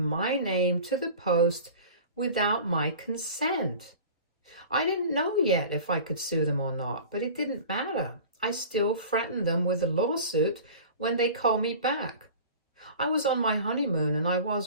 name to the post without my consent. I didn't know yet if I could sue them or not, but it didn't matter. I still threatened them with a lawsuit when they called me back. I was on my honeymoon and I was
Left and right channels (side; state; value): both; inverted; correlation -0.39